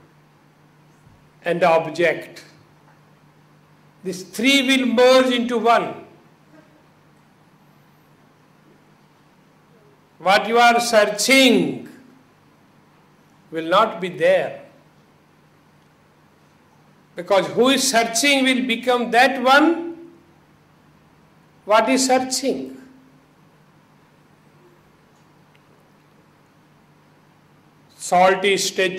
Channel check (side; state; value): both; identical; correlation 1.00